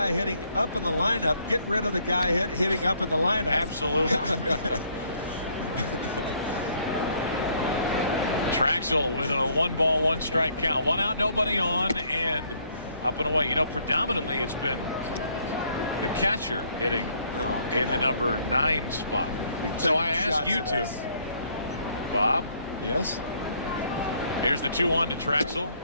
hitting up in the lineup, get rid of the guy hitting up in the lineup. Absolutely. Traxel with a 1-ball, 1-strike count. 1 out, nobody on, and up and away. You know, predominantly it's been the catcher hitting in the number 9 spot. So I ask you two, Bob. Yes. Here's the 2-1 to Traxel.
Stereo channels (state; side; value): inverted; both; correlation -0.66